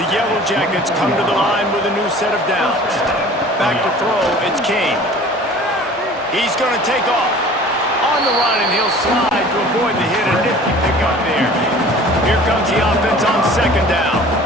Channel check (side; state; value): both; normal; correlation 0.46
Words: Yellow Jackets come to the line with a new set of downs. Back to throw, it's Kane. He's going to take off. On the run, and he'll slide to avoid the hit. A nifty pickup there. Here comes the offense on 2nd down.